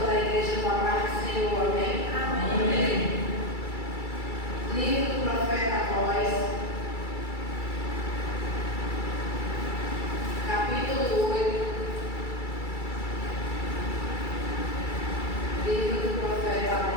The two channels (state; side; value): late; right; 2.3 ms